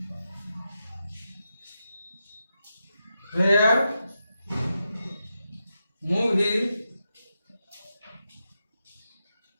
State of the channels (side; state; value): both; inverted; correlation -0.87